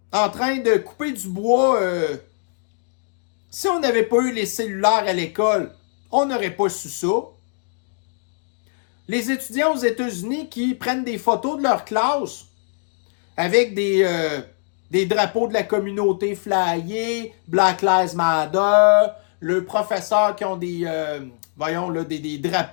en train de couper du bois. Si on n'avait pas eu les cellulaires à l'école, on n'aurait pas su ça. Les étudiants aux États-Unis qui prennent des photos de leur classe avec des drapeaux de la communauté flyée, Black Lives Matter, le professeur qui ont des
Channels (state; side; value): silent; right; digital silence